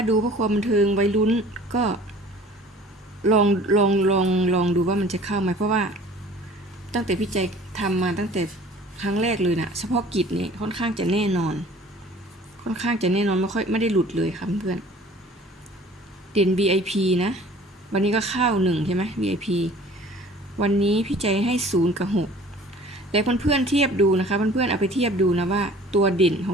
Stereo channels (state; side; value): normal; both; correlation 0.48